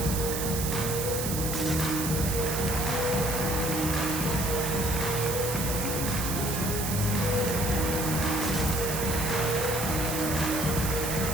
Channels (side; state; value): right; noise; hiss, 4 dB below the sound